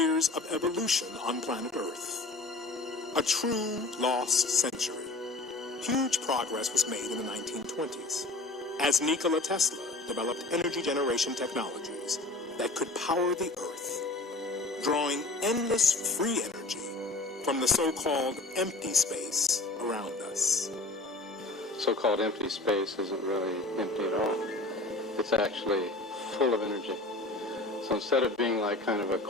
of evolution on planet Earth. A true lost century. Huge progress was made in the 1920s as Nikola Tesla developed energy generation technologies that could power the Earth, drawing endless free energy from the so-called empty space around us. So-called empty space isn't really empty at all. It's actually full of energy. So instead of being like kind of a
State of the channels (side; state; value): right; quieter; 3.0 dB